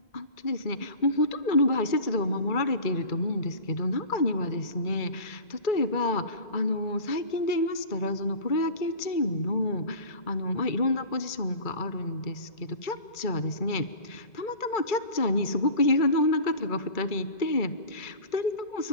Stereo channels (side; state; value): right; late; 2.3 ms